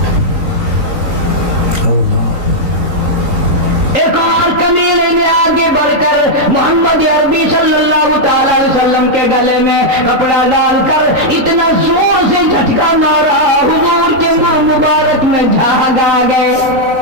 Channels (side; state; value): left; late; 3.8 ms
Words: ایک اور کمینے نے آگے بڑھ کر محمد عربی صلی اللہ تعالیٰ علیہ وسلم کے گلے میں کپڑا ڈال کر اتنا زور سے جھٹکا مارا، حضور کے منہ مبارک میں جھاگ آ گئے۔